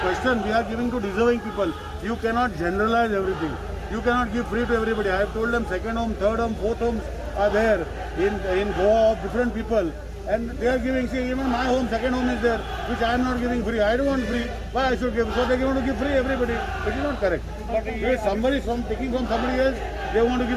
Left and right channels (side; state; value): both; identical; correlation 1.00